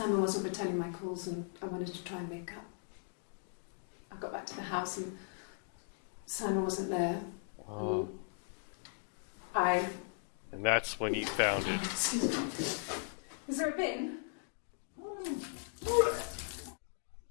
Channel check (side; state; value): right; silent; digital silence